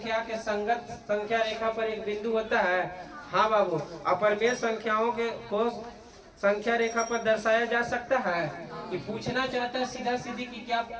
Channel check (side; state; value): both; identical; correlation 1.00